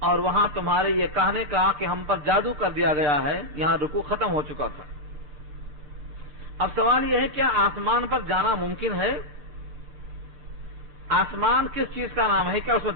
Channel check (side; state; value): left; late; 6.8 ms